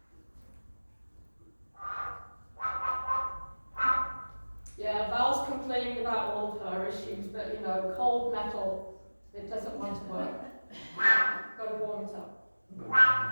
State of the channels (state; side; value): inverted; both; correlation -1.00